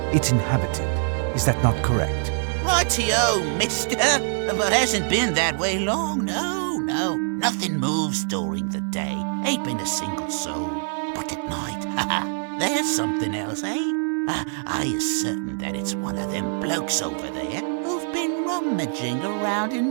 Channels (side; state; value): left; silent; digital silence